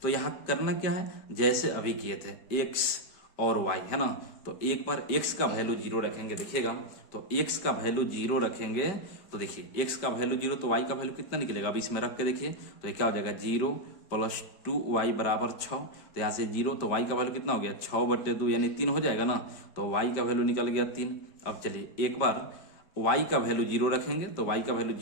तो यहाँ करना क्या है, जैसे अभी किए थे x और y, है ना। तो एक बार x का वैल्यू 0 रखेंगे, देखिएगा, तो x का वैल्यू 0 रखेंगे, तो देखिए x का वैल्यू 0, तो y का वैल्यू कितना निकलेगा, अब इसमें रख के देखिए, तो ये क्या हो जाएगा 0 + 2y = 6। तो यहाँ से 0, तो y का वैल्यू कितना हो गया 6/2, यानी 3 हो जाएगा ना। तो y का वैल्यू निकल गया 3। अब चलिए, एक बार y का वैल्यू 0 रखेंगे, तो y का वैल्यू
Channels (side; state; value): right; late; 5.1 ms